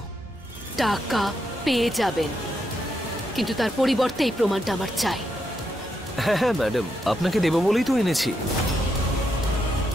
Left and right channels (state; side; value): normal; both; correlation 0.81